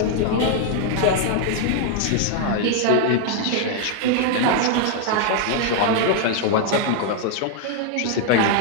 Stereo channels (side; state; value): both; different; correlation 0.00